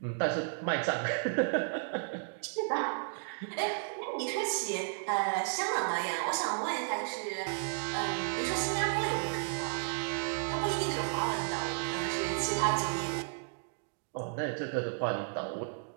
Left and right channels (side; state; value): left; silent; digital silence